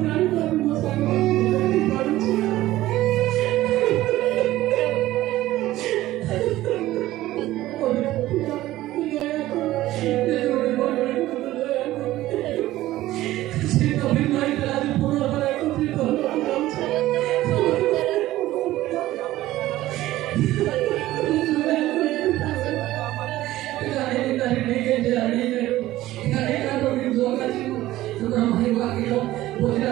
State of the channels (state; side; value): quieter; left; 15.8 dB